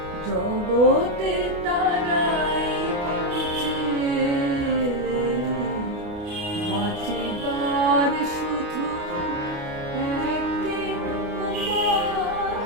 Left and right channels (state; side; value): late; left; 29 ms